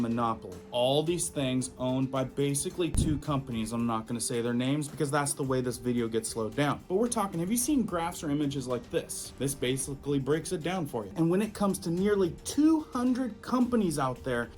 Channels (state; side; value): identical; both; correlation 1.00